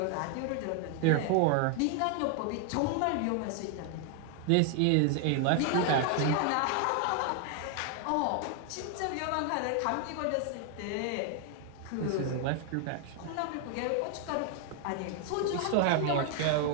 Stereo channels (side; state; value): both; different; correlation 0.00